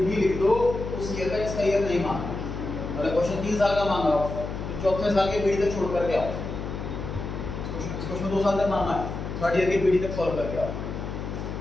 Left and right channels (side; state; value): left; noise; hum, 6 dB below the sound